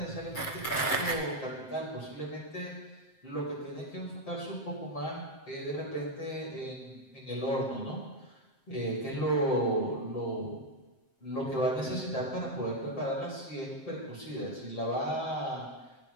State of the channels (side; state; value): right; late; 7.6 ms